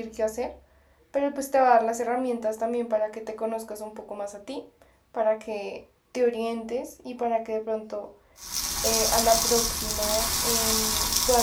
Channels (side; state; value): both; identical; correlation 1.00